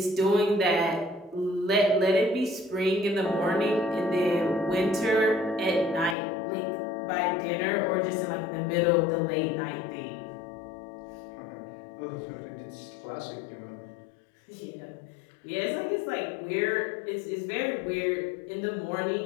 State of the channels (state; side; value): drops out; right; at 6.2 s